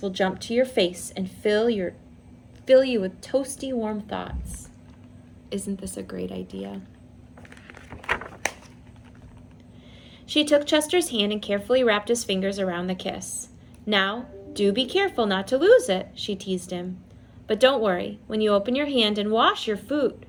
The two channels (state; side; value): identical; both; correlation 1.00